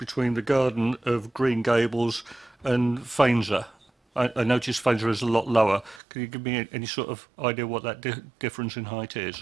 the garden of Green Gables and Faenza? I noticed Faenza is a lot lower. Can you give me any sort of idea what that difference in height is?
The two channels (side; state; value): left; drops out; at 6.0 s